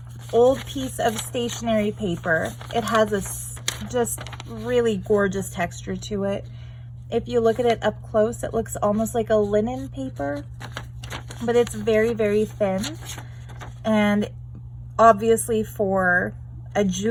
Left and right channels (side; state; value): both; identical; correlation 1.00